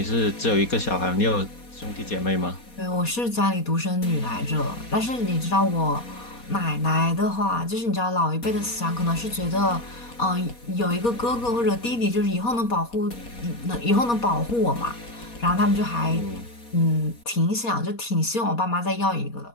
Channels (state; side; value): late; right; 4.2 ms